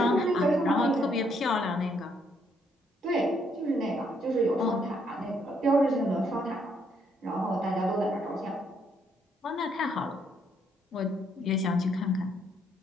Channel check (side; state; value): both; normal; correlation 0.71